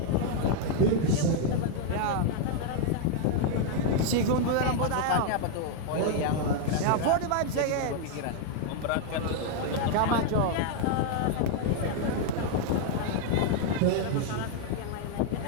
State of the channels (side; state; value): both; different; correlation 0.00